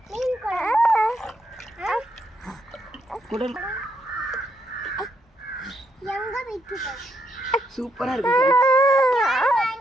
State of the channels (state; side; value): normal; both; correlation 0.77